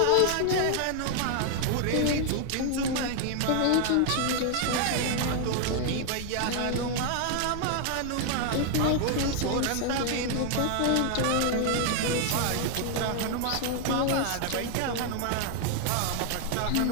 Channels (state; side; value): different; both; correlation 0.00